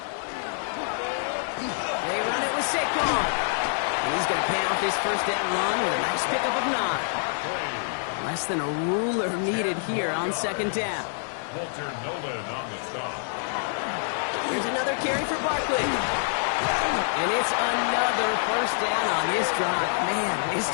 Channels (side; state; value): right; silent; digital silence